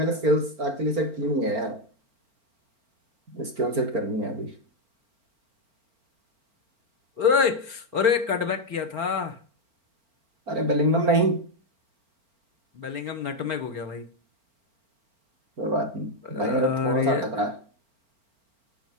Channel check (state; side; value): late; left; 4.4 ms